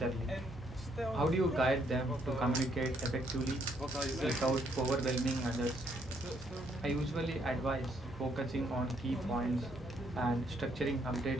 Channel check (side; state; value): both; normal; correlation 0.71